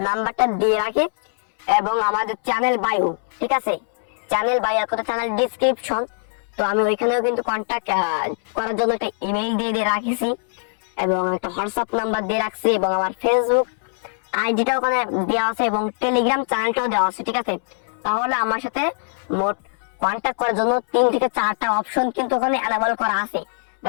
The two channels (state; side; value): silent; right; 62 dB below the other